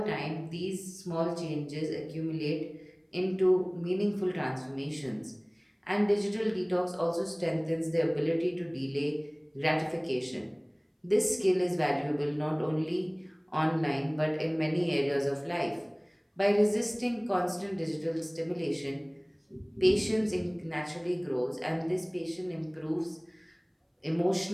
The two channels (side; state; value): both; identical; correlation 1.00